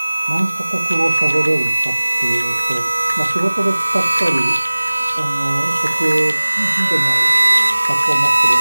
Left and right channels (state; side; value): inverted; both; correlation -1.00